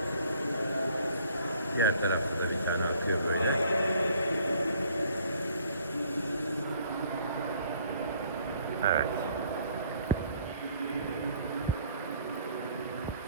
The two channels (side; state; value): both; inverted; correlation -0.60